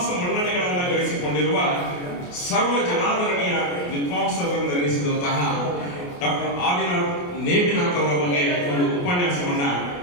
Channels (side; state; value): right; late; 28 ms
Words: ಮನ್ನಣೆಗಳನ್ನು ಗಳಿಸಿಕೊಂಡಿರುವ ಸರ್ವ ಜನಾದರಣೀಯ ವಿದ್ವಾಂಸರೆಂದೆನಿಸಿದಂತಹ ಡಾಕ್ಟರ್ ಆದಿನಾಥ್ ನೇಮಿನಾಥ್ ಅವರ ಬಗ್ಗೆ ಒಂದು ಉಪನ್ಯಾಸವನ್ನ